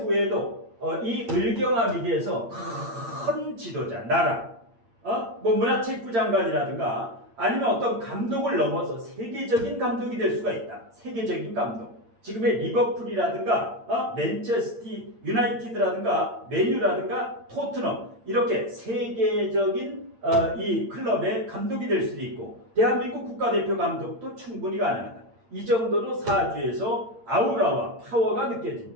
이 을경합이 돼서 큰 지도자, 나라, 문화체육부 장관이라든가 아니면 어떤 감독을 넘어서 세계적인 감독이 될 수가 있다. 세계적인 감독. 지금의 리버풀이라든가 맨체스터 유나이티드라든가 맨유라든가 토트넘, 이렇게 세계적인 이 클럽의 감독이 될 수도 있고 대한민국 국가대표 감독도 충분히 가능하다. 이 정도로 사주에서 아우라와 파워가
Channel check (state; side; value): late; left; 8.7 ms